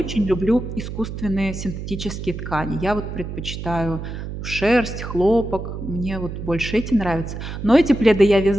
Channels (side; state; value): right; noise; hum, 7 dB below the sound